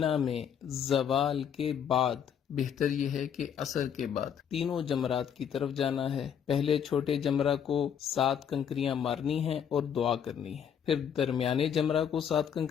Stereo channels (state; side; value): quieter; right; 8.2 dB